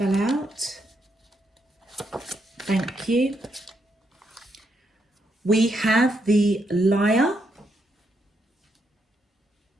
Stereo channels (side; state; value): both; normal; correlation 0.79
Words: out. Thank you. We have the Liar.